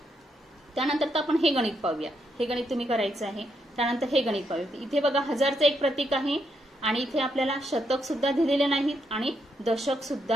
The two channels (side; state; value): both; normal; correlation 0.78